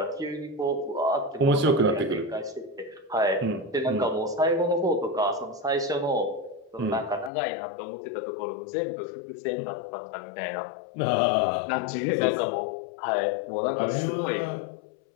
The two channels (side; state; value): right; drops out; at 7.3 s